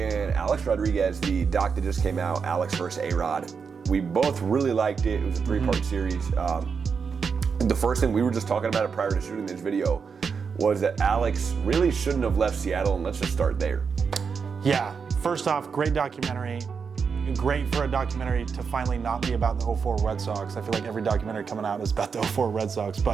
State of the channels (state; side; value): quieter; left; 5.8 dB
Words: Alex Rodriguez, the doc that just came out, Alex versus ARod. We both really liked it. It was a three-part series. The first thing, we were just talking about it prior to shooting this video, was that Alex really shouldn't have left Seattle, and let's just start there. Yeah, first off, great documentary. Great for a documentary to finally not be about the 04 Red Sox. I feel like every documentary coming out is about the 04 Red Sox,